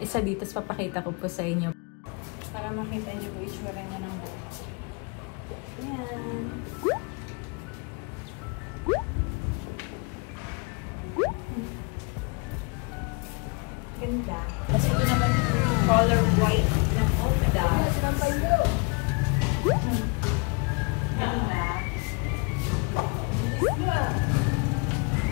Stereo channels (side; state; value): right; quieter; 31.0 dB